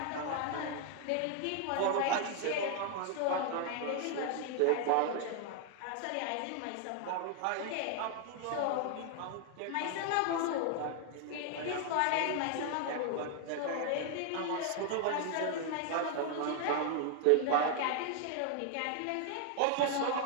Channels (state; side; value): different; both; correlation 0.00